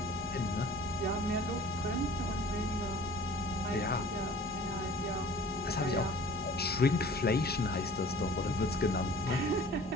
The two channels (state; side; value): normal; both; correlation 0.47